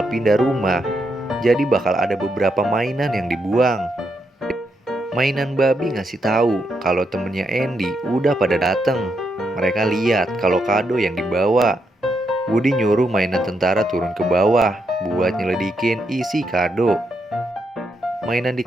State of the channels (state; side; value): normal; both; correlation 0.80